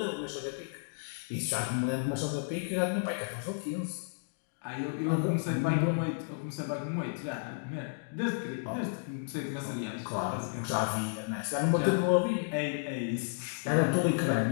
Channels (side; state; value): right; silent; digital silence